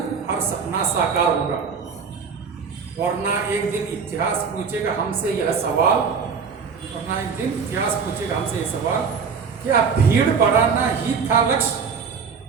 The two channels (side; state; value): left; quieter; 5.8 dB